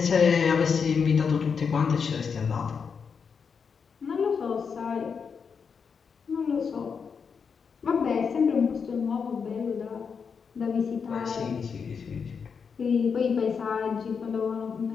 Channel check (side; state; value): right; quieter; 6.1 dB